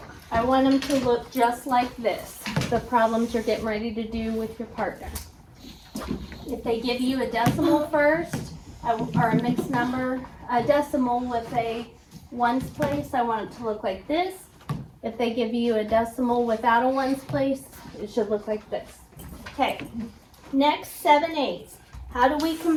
I want them to look just like this, the problems you're getting ready to do with your partner. If they give you a decimal first, or a mixed number, a decimal with a ones place, I want it to look like this. If they give you a decimal without a ones place, it should look like this. Okay, next 7/8. How do we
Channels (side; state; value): both; identical; correlation 1.00